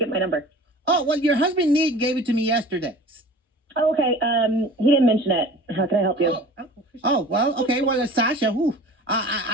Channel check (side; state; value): both; normal; correlation 0.42